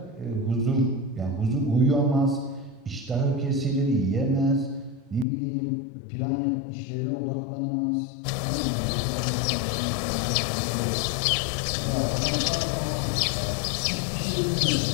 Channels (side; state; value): right; drops out; at 5.2 s